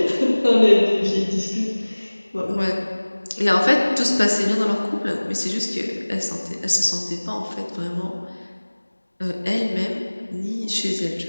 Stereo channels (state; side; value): inverted; both; correlation -1.00